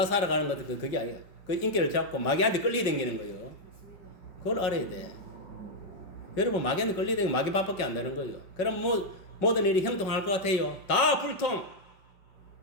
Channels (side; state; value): right; late; 5.4 ms